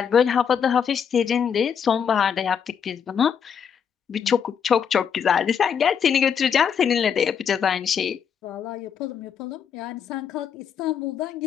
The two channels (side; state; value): right; quieter; 7.4 dB